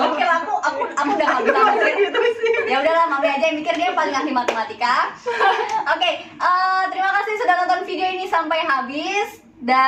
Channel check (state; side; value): identical; both; correlation 1.00